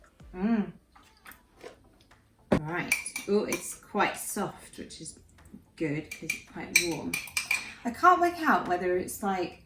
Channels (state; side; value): identical; both; correlation 1.00